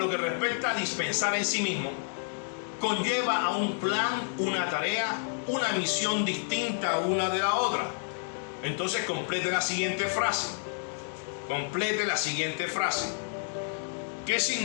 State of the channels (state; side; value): silent; right; 58 dB below the other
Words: que respecta a dispensar en sí mismo, conlleva a un plan, una tarea, una misión distinta una de la otra. Entonces complete la siguiente frase. Complete la siguiente frase. ¿Qué